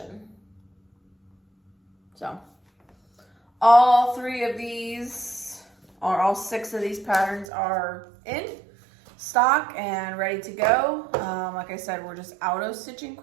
So all 6 of these patterns are in stock and ready to go. Like I said, we're just out of Stitching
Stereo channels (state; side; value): drops out; left; at 7.5 s